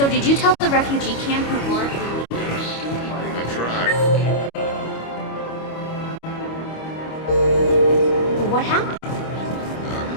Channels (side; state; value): right; late; 25 ms